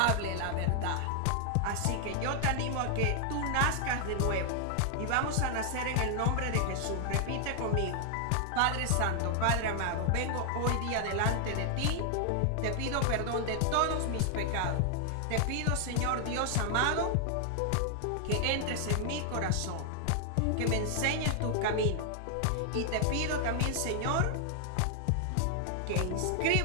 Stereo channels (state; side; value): different; both; correlation 0.00